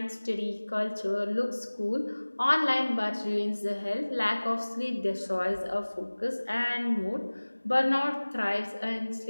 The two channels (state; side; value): inverted; both; correlation -1.00